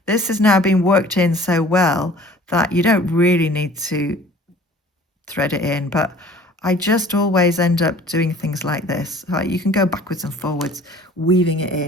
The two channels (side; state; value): both; normal; correlation 0.49